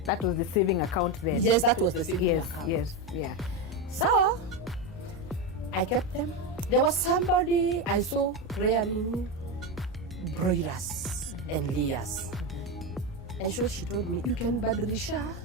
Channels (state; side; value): normal; both; correlation 0.13